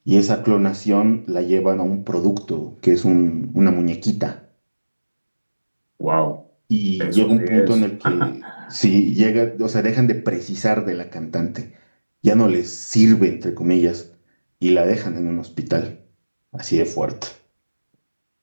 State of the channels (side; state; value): both; inverted; correlation -1.00